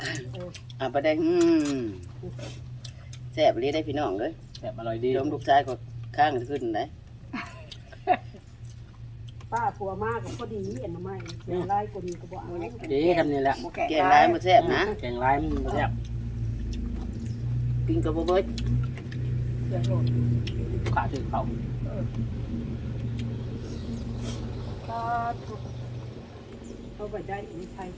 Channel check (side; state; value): both; identical; correlation 1.00